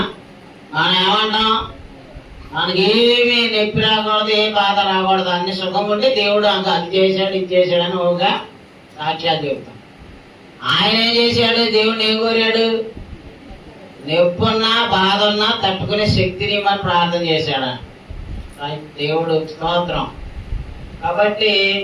మనం ఏమంటాం, మనకేమీ నొప్పి రాకూడదు, ఏ బాధ రాకూడదు, అన్ని సుఖం ఉంటే దేవుడు అది చేశాడు ఇది చేశాడు అని ఒక సాక్ష్యాలు చెబుతాం. ఆయన ఏం చేశాడు, దేవుడిని ఏం కోరాడు, నొప్పి ఉన్నా బాధ ఉన్నా తట్టుకునే శక్తిని మనం ప్రార్థన చేశాడు దేవుడు స్తోత్రం. కాబట్టి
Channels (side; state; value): both; identical; correlation 1.00